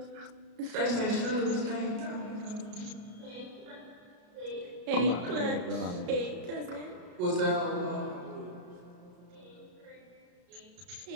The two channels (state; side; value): late; left; 33 ms